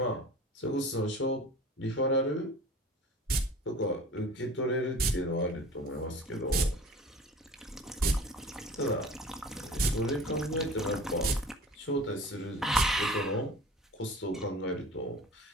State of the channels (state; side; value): normal; both; correlation 0.41